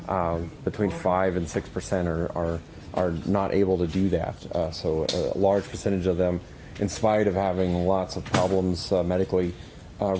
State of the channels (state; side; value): identical; both; correlation 1.00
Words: Between 5 and 6% are not able to do that. So a large percentage of them, in spite of having lots of problems medically,